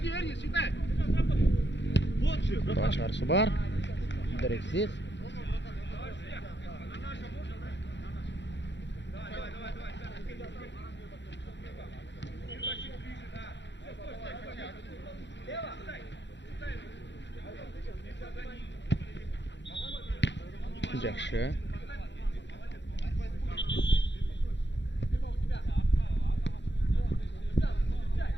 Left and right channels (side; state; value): right; late; 0.52 ms